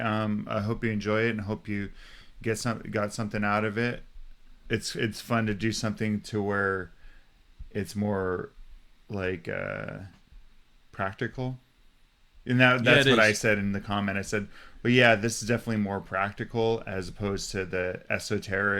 hope you enjoy it and hope you got something out of it. It's fun to do something to where it's more like practical. And yeah, that's it what I is. said in the comment. I said, well, yeah, this is definitely more practical as opposed to the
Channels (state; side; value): identical; both; correlation 1.00